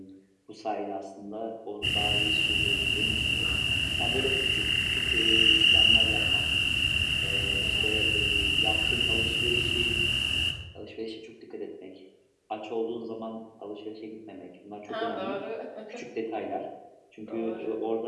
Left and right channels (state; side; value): identical; both; correlation 1.00